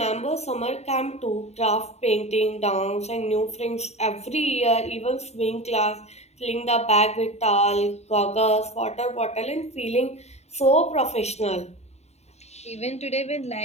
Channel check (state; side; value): late; right; 0.32 ms